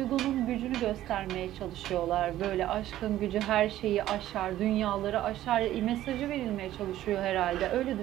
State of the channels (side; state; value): left; quieter; 13.6 dB